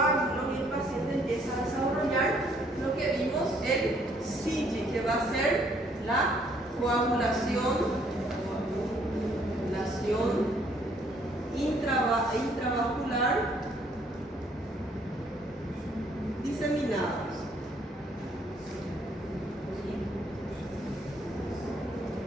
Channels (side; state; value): both; normal; correlation 0.65